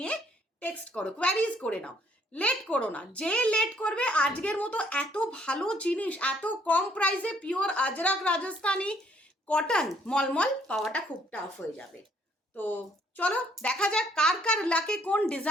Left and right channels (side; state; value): both; normal; correlation 0.65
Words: টেক্সট করো, কোয়ারিজ করে নাও, লেট করো না। যে লেট করবে, আজকের মতো এত ভালো জিনিস এত কম প্রাইসে পিওর আজরাক রাজস্থানি কটন মলমল পাওয়াটা খুব টাফ হয়ে যাবে। তো চলো দেখা যাক কার কার লাকে কোন